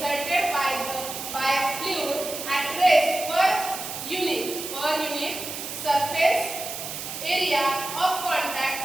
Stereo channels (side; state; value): right; noise; hiss, 7 dB below the sound